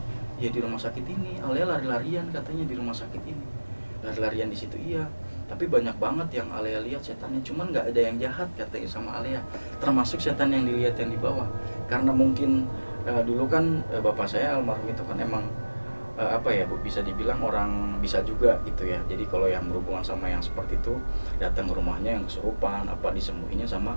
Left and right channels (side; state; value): both; inverted; correlation -1.00